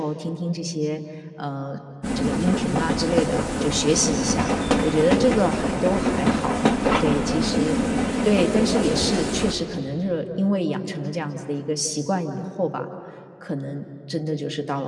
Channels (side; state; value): both; identical; correlation 1.00